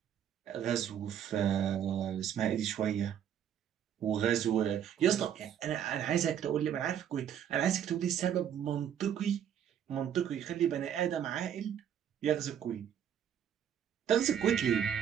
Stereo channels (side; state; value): left; quieter; 9.3 dB